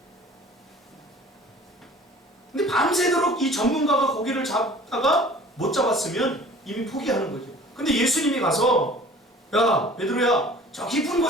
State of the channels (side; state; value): both; normal; correlation 0.47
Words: 근데 밤새도록 이 전문가가 고기를 잡다가 못 잡았으면 이미 포기하는 거죠. 근데 예수님이 가서 야 베드로야 저 깊은